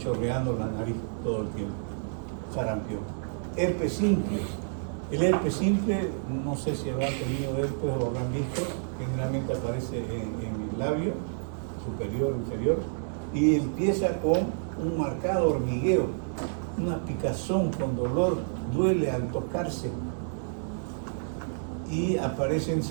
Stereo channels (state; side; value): silent; left; 58 dB below the other